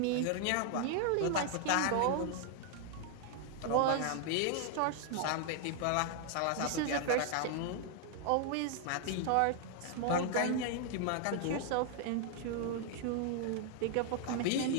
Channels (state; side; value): different; both; correlation 0.00